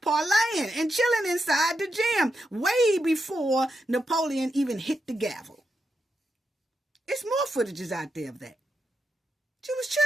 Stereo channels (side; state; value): both; normal; correlation 0.85